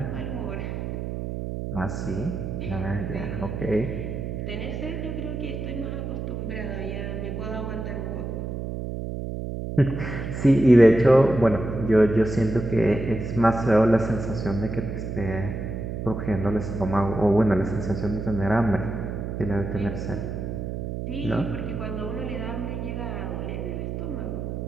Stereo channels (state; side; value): noise; right; hum, 5 dB below the sound